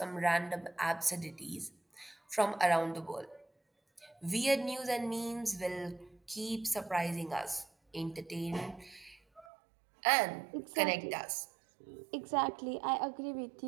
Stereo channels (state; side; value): drops out; left; at 9.5 s